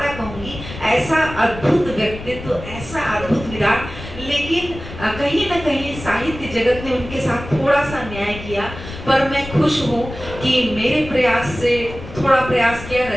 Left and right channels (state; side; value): noise; left; rumble, 12 dB below the sound